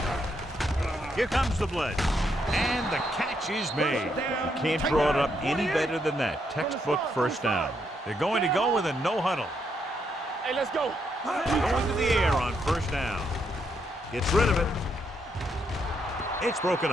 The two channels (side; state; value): both; normal; correlation 0.77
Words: Here comes the blitz. And the catch is made. You can't draw it up any better than that. Textbook 1st down. They're going to go with a no huddle. Hey, let's go. Going to the air on 1st down. Gets rid of it. It's broken